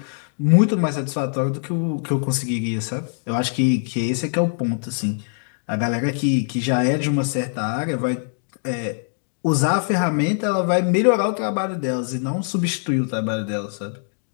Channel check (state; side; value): silent; right; digital silence